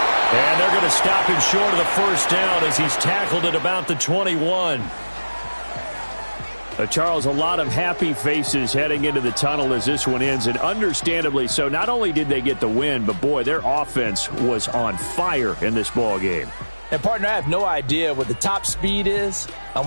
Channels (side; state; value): both; inverted; correlation -1.00